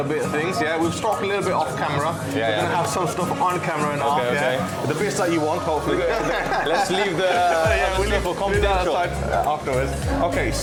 bit of things. We've talked a little bit off camera. We're going to have some stuff on camera and off. The bits that you want, hopefully. Let's leave the stuff for confidential afterwards. Okay,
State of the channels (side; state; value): both; identical; correlation 1.00